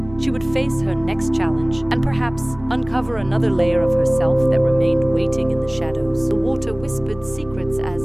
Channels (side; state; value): right; noise; rumble, 19 dB below the sound